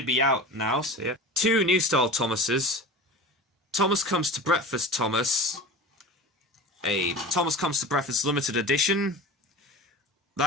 be out now, so yeah. 2 new style Thomases. Thomas Comes to Breakfast Thomas. A Thomas Comes to Breakfast limited edition.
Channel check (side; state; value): both; normal; correlation 0.33